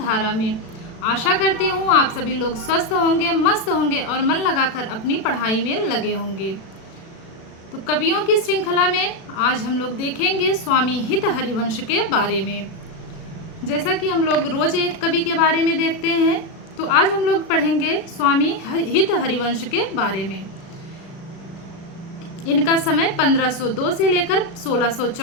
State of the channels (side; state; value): right; late; 36 ms